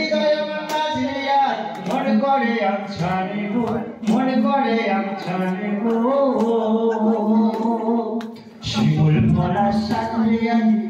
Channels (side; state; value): both; identical; correlation 1.00